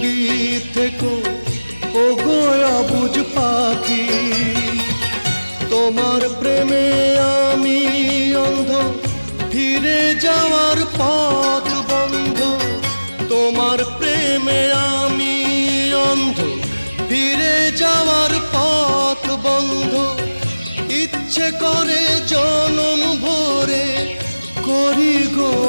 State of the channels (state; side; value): inverted; both; correlation -1.00